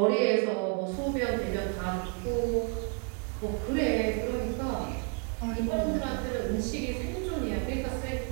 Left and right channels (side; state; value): left; quieter; 36.2 dB